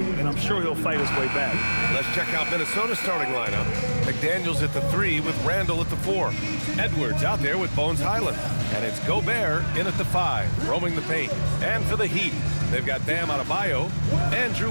I'm sure he'll fight his way back. Let's check out Minnesota's starting lineup. McDaniels at the 3 with Randall at the 4. Edwards out there with Bones Highland. And it's Gobert in at the 5, roaming the paint. And for the Heat, they've got Bam Adebayo. Andrew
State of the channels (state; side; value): inverted; both; correlation -1.00